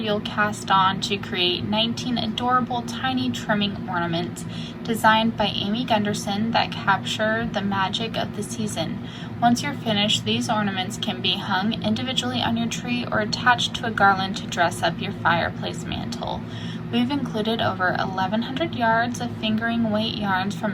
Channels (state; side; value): identical; both; correlation 1.00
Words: cast on to create 19 adorable tiny trimming ornaments designed by Amy Gunderson that capture the magic of the season. Once you're finished, these ornaments can be hung individually on your tree or attached to a garland to dress up your fireplace mantle. We've included over 1,100 yards of fingering weight yarns from